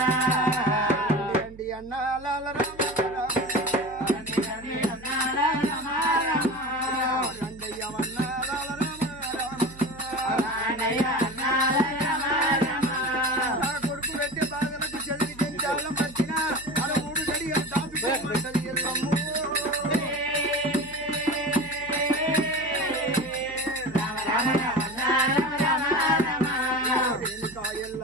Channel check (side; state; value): right; noise; hum, 19 dB below the sound